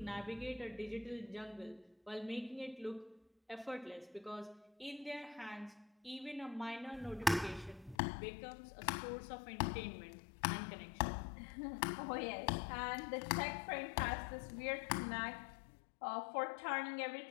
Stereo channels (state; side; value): drops out; right; at 8.0 s